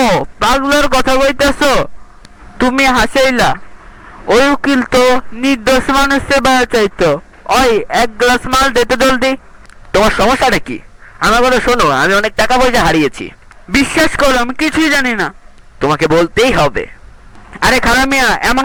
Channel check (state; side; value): identical; both; correlation 1.00